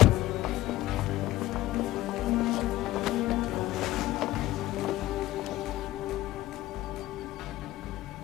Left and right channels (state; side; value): quieter; right; 16.2 dB